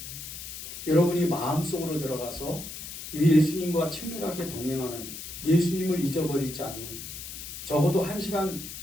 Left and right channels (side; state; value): left; noise; hiss, 10 dB below the sound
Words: 여러분이 마음속으로 들어가서 예수님과 친밀하게 동행하는, 예수님을 잊어버리지 않는, 적어도